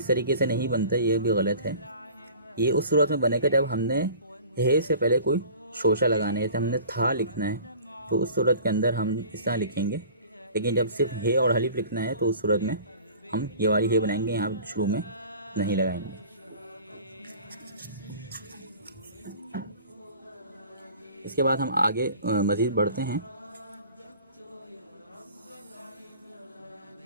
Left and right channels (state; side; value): inverted; both; correlation -0.45